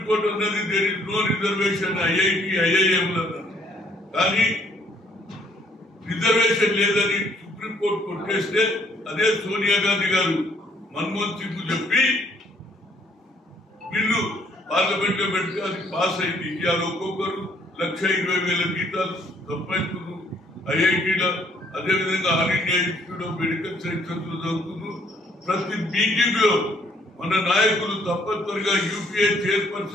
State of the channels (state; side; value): normal; both; correlation 0.65